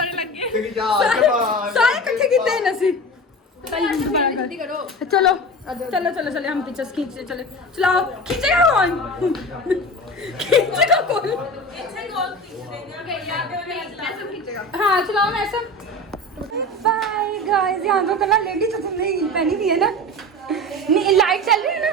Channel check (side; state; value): both; normal; correlation 0.31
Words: लग गए। सकीशा जमाल सारे इकट्ठे कितने हैं नसीब। करो चलो चलो चलो चले हम पिक्चर्स खींचते चले। चलाओ खींचेगा कौन? खींचेगा कौन? हाँ चलाओ ना ऐसा। बाय गाइस यहाँ तो कल लेडी तो तुमने हील पहनी हुई है ना। लाइट चल रही है ना।